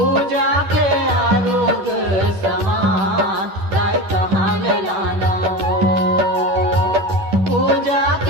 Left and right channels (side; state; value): left; late; 10 ms